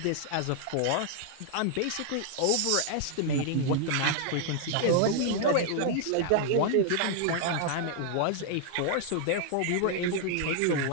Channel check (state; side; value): different; both; correlation 0.00